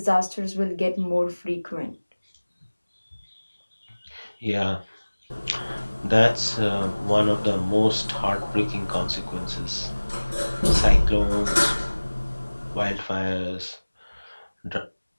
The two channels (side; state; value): both; inverted; correlation -1.00